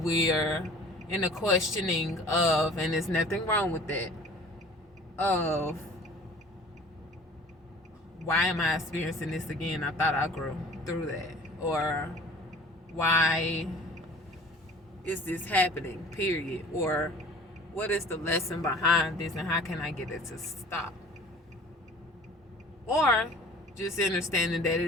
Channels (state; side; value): normal; both; correlation 0.46